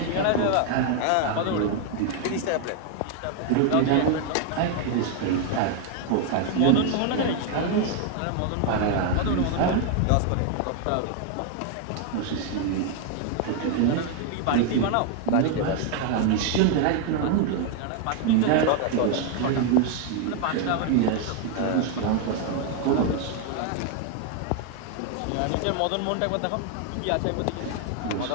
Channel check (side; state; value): both; different; correlation 0.01